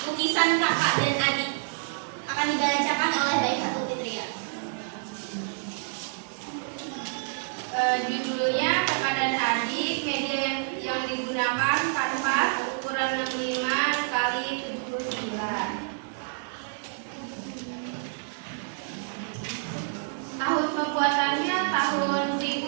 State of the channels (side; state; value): left; silent; digital silence